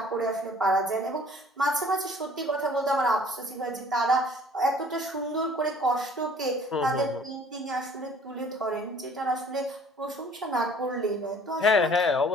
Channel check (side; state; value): both; normal; correlation 0.53